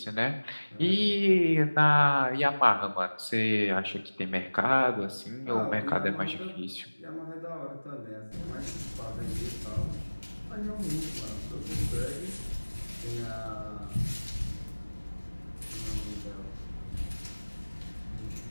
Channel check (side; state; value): both; inverted; correlation -1.00